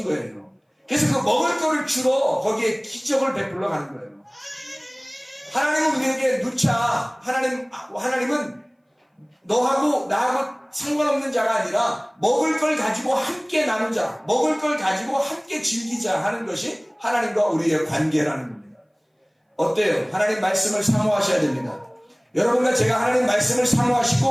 거예요. 그래서 그 먹을 거를 주러 거기에 기적을 베풀러 가는 거예요. 하나님은 우리에게 누차 하나님은 너하고 나하고 상관없는 자가 아니라 먹을 걸 가지고 함께 나누자, 먹을 걸 가지고 함께 즐기자 하는 것이 하나님과 우리의 관계라는 겁니다. 어때요? 하나님 말씀을 사모하셔야 됩니다. 여러분과 제가 하나님 말씀을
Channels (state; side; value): identical; both; correlation 1.00